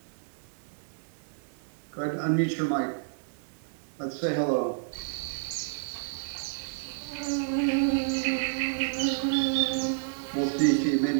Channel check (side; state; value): left; silent; digital silence